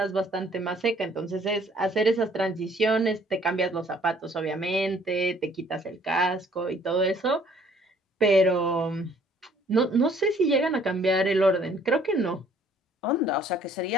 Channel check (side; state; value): both; normal; correlation 0.59